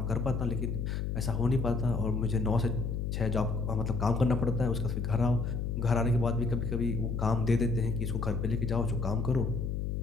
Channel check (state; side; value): noise; left; hum, 1 dB below the sound